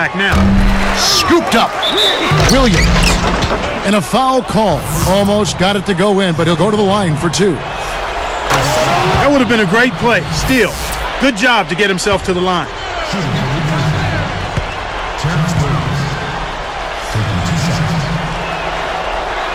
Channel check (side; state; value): both; identical; correlation 1.00